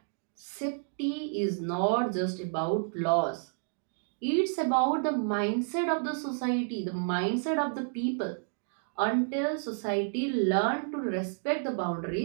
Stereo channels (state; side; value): silent; left; digital silence